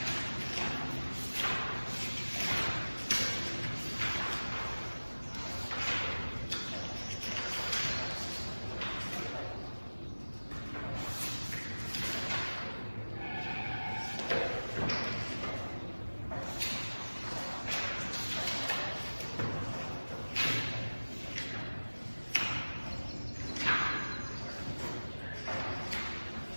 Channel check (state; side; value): inverted; both; correlation -1.00